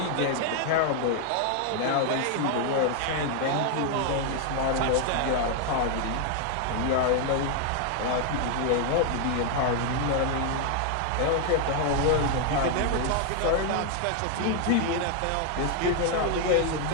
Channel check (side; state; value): both; different; correlation 0.00